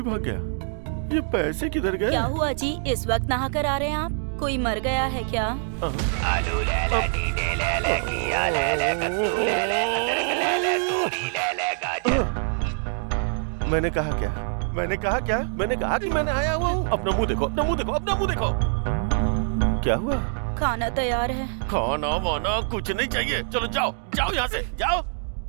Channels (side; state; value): left; silent; 62 dB below the other